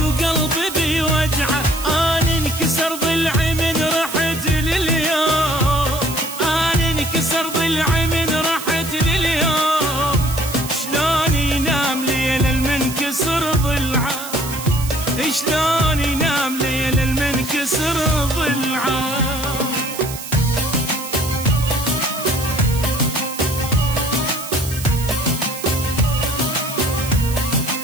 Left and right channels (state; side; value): noise; right; hiss, 10 dB below the sound